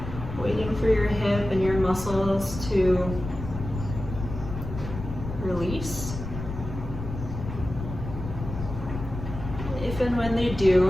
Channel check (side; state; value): left; noise; rumble, 8 dB below the sound